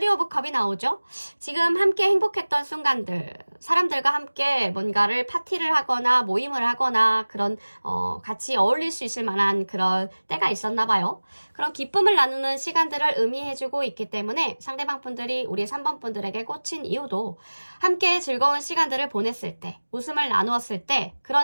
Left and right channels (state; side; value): inverted; both; correlation -1.00